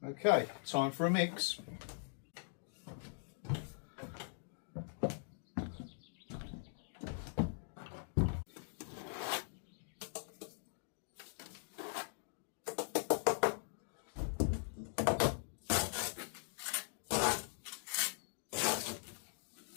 Okay, time for a mix.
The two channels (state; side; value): silent; right; digital silence